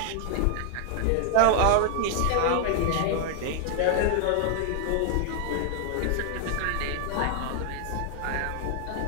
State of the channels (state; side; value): different; both; correlation 0.00